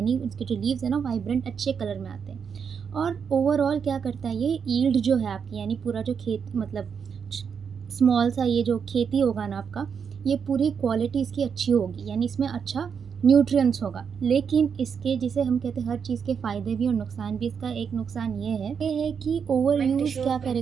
उसके जो लीव्स है ना वाइब्रेंट अच्छे कलर में आते हैं। और ओवरऑल क्या करता है, ये यील्ड जो है आपकी, यानी पूरा जो खेत मतलब स्मॉल सा ये जो खेती होगा ना आपका, ये पूरी क्वालिटी इसकी अच्छी होगी, यानी इसमें अच्छा न्यूट्रिएंट्स होगा। लेकिन इसके जिसे हम कहते हैं हर चीज़ के फ़ायदे भी और नुकसान भी, इसका एक नुकसान ये है कि ओवर यूज़ क्या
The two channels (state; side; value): quieter; left; 6.7 dB